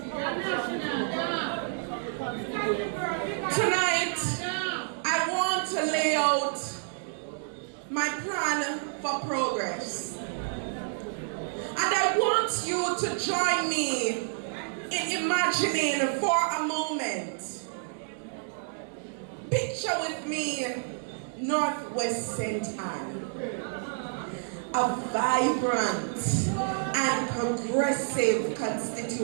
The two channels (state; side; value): silent; left; digital silence